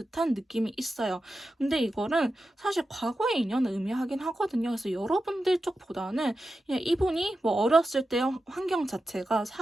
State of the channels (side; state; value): both; normal; correlation 0.91